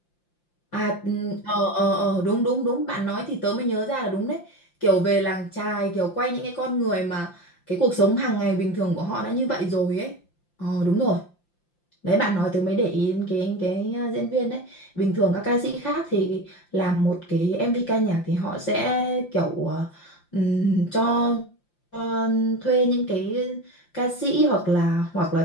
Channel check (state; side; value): late; right; 5.8 ms